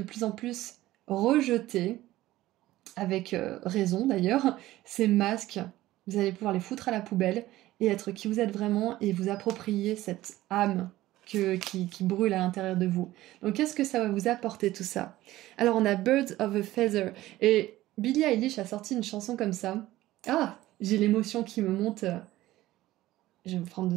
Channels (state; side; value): quieter; left; 16.0 dB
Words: plus en plus rejeter, avec raison d'ailleurs, ces masques. Vous allez pouvoir les foutre à la poubelle et être qui vous êtes vraiment et vous approprier cette âme qui brûle à l'intérieur de vous. Donc qu'est-ce que ça va vous apporter tout ça? Alors on a Birds of a Feather et Billie Eilish a sorti une chanson comme ça. Ah, j'ai l'émotion qui me monte. Je vais me prendre